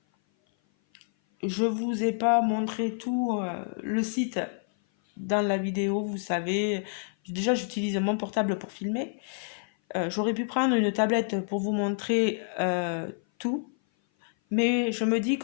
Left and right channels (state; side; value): silent; right; 56 dB below the other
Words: je vous ai pas montré tout le site dans la vidéo, vous savez. Déjà, j'utilise mon portable pour filmer. J'aurais pu prendre une tablette pour vous montrer tout, mais je me dis